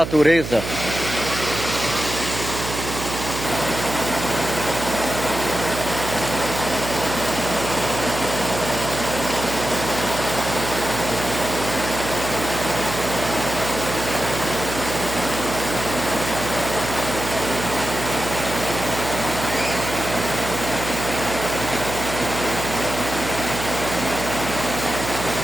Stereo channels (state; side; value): noise; right; hum, 7 dB below the sound